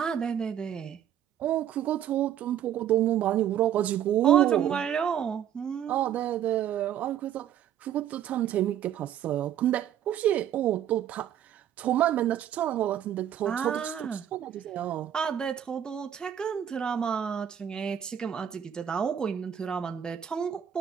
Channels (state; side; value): quieter; left; 10.1 dB